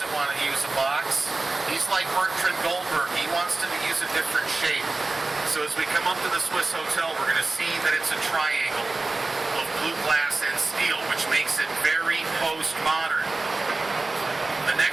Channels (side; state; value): left; quieter; 3.3 dB